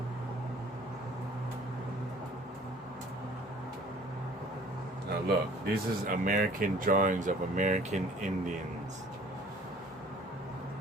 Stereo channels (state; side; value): normal; both; correlation 0.51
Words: Now look, this is American drawings of American Indians.